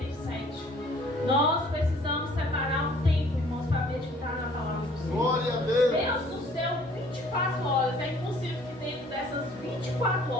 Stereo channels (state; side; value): normal; both; correlation 0.56